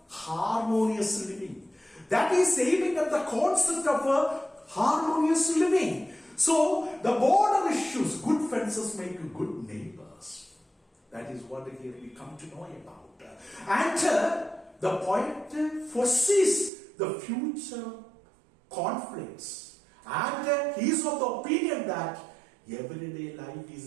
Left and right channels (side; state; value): left; drops out; at 16.7 s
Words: harmonious living. That is aiming at the concept of a harmonious living. So the border issues, good fences make good neighbors. That is what here we come to know about. And the poet foresees the future conflicts. And he is of the opinion that everyday life